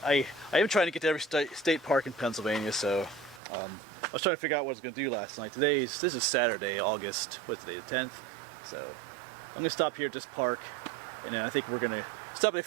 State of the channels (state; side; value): drops out; left; at 3.4 s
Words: am trying to get to every state park in Pennsylvania. So I was trying to figure out what I was going to do last night. This is Saturday, August. What's today? The 10th. So I'm going to stop here at this park, and then I think we're going to stop at a